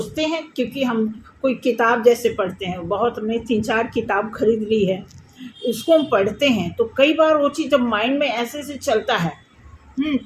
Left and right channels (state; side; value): identical; both; correlation 1.00